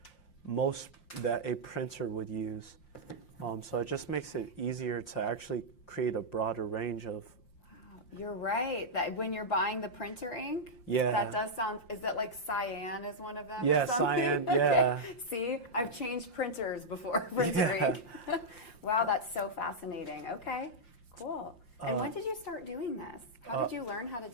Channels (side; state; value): right; late; 5.7 ms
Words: a printer would use. So it just makes it easier to actually create a broader range of. Wow, you're right. That when you're buying the printer ink, yeah, that does sound. Is that like cyan is one of them? Yeah, cyan. Yeah. Okay. See, I've changed printers before. Printer ink. Wow, that's so fascinating. Okay, cool. And when did you start doing this? How did you learn how to